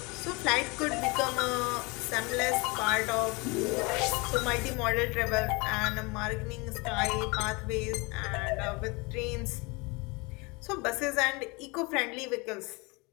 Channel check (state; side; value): quieter; right; 27.3 dB